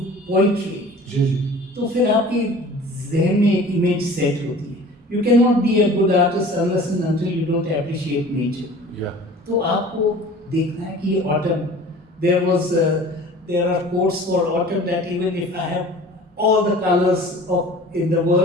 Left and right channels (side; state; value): both; normal; correlation 0.44